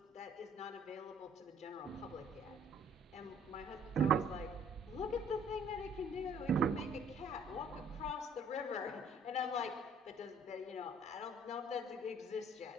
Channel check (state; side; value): normal; both; correlation 0.58